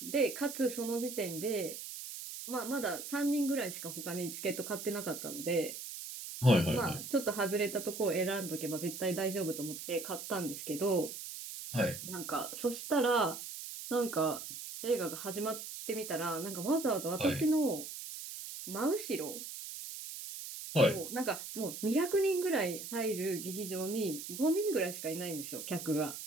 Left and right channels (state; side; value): noise; right; hiss, 9 dB below the sound